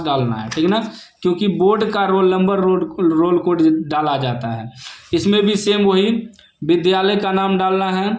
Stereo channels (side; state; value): both; identical; correlation 1.00